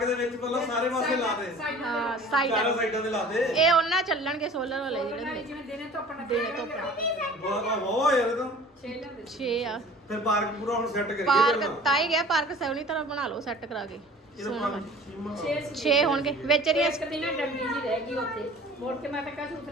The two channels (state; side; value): normal; both; correlation 0.45